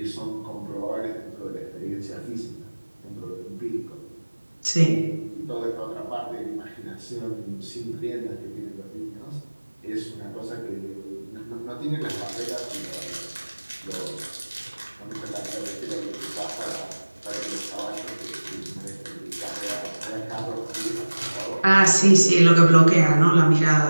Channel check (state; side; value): inverted; both; correlation -1.00